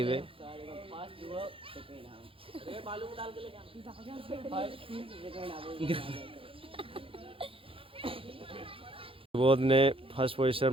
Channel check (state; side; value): late; left; 0.26 ms